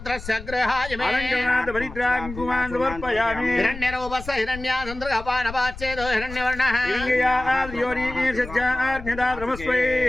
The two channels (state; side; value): noise; left; rumble, 12 dB below the sound